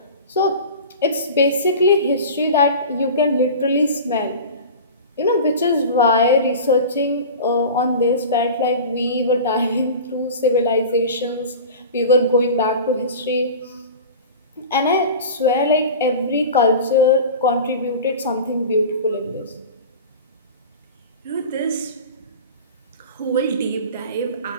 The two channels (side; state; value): both; inverted; correlation -0.35